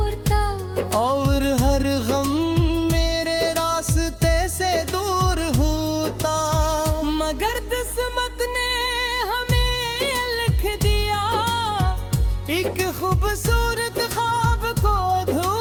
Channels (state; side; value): identical; both; correlation 1.00